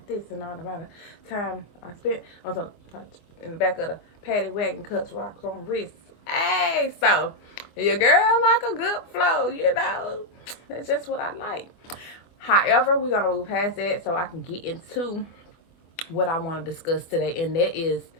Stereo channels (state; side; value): late; right; 24 ms